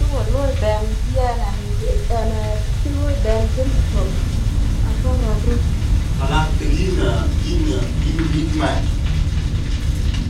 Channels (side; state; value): both; identical; correlation 1.00